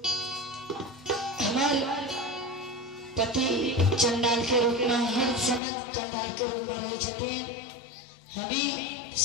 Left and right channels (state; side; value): drops out; right; at 5.6 s